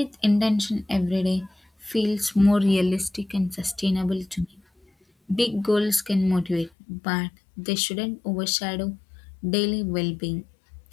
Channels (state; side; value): drops out; right; at 6.7 s